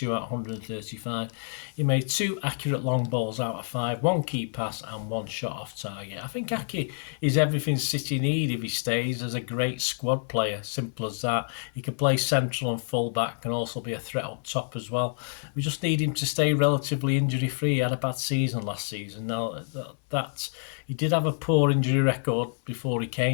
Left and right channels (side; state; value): right; silent; 60 dB below the other